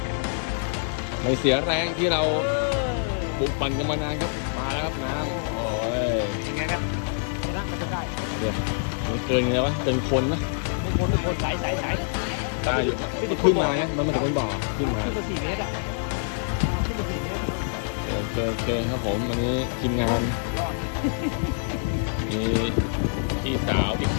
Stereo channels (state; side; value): silent; right; digital silence